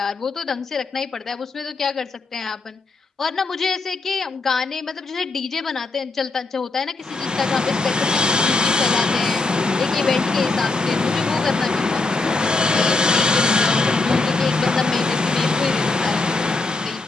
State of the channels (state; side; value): quieter; right; 3.6 dB